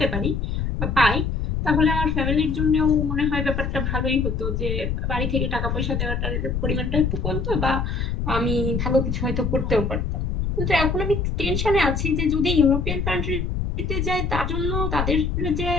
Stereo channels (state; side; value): noise; left; rumble, 1 dB below the sound